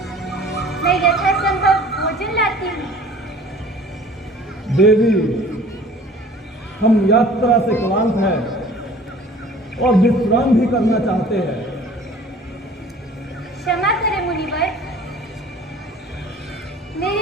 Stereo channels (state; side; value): normal; both; correlation 0.47